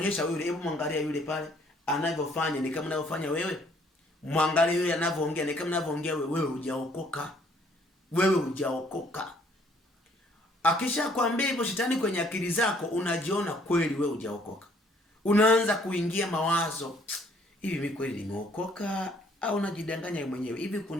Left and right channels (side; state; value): both; normal; correlation 0.63